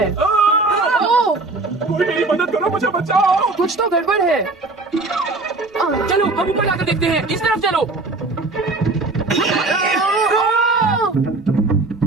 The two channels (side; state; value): left; quieter; 3.3 dB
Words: ओह, कोई मेरी मदद करो, मुझे बचाओ। कुछ तो गड़बड़ है। चलो हम ऊपर जाकर देखते हैं। इस तरफ चलो।